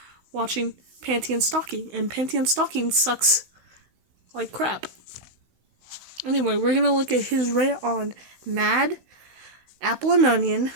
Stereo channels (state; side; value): late; left; 16 ms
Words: watching Panty and Stocking, and Panty and Stocking sucks like crap. Anyway, we're gonna look at his rant on Mad, Apple and Onion,